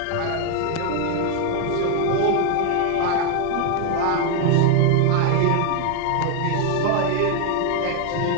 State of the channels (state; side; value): different; both; correlation 0.00